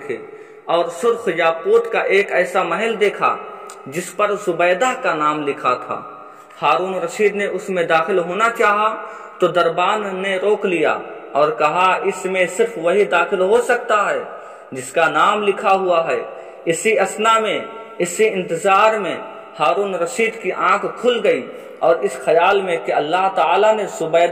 اور سرخ یاقوت کا ایک ایسا محل دیکھا جس پر زبیدہ کا نام لکھا تھا۔ ہارون رشید نے اس میں داخل ہونا چاہا تو دربان نے روک لیا اور کہا، اس میں صرف وہی داخل ہو سکتا ہے جس کا نام لکھا ہوا ہے۔ اسی اثنا میں، اسی انتظار میں ہارون رشید کی آنکھ کھل گئی اور اس خیال میں کہ اللہ تعالیٰ نے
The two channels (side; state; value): both; identical; correlation 1.00